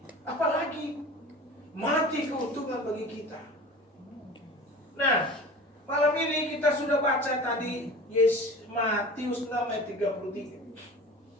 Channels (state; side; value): normal; both; correlation 0.38